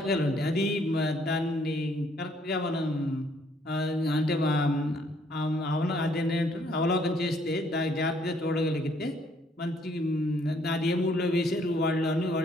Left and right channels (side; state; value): both; normal; correlation 0.66